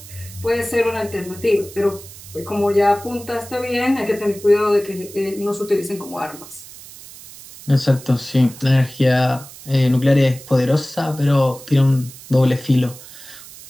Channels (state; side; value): noise; right; hiss, 17 dB below the sound